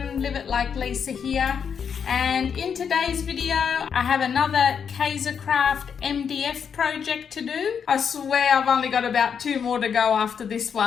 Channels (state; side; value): quieter; right; 7.1 dB